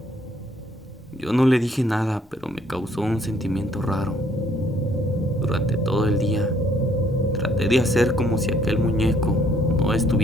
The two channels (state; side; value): normal; both; correlation 0.65